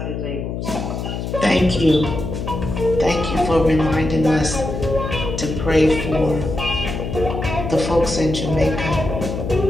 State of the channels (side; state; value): left; noise; hum, 5 dB below the sound